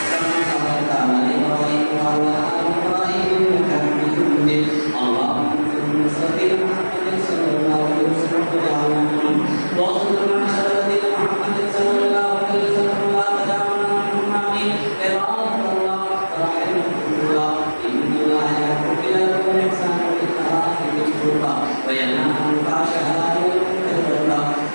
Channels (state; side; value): inverted; both; correlation -1.00